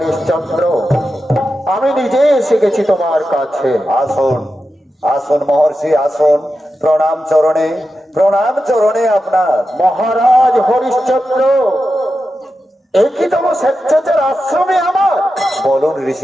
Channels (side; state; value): both; normal; correlation 0.90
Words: আমি নিজে এসে গেছি তোমার কাছে। আসুন আসুন মহর্ষি, আসুন। প্রণাম চরণে আপনার। মহারাজ হরিশ্চন্দ্র, একই তম স্বেচ্ছাচার আশ্রমে আমার। বলুন